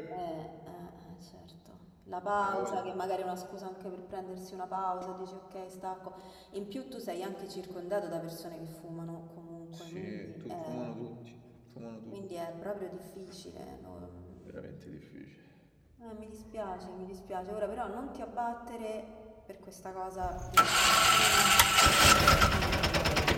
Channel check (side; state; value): both; identical; correlation 1.00